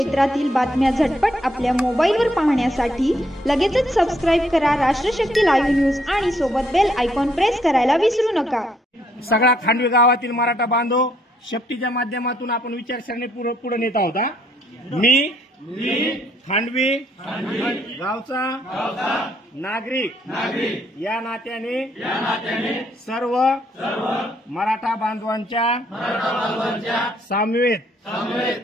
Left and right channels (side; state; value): both; normal; correlation 0.70